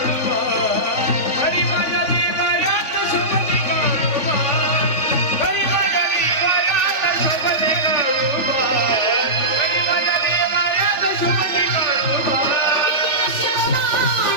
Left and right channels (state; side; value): late; right; 3.3 ms